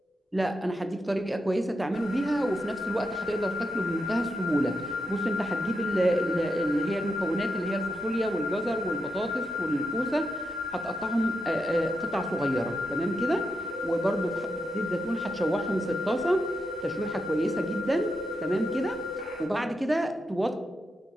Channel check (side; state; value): both; normal; correlation 0.85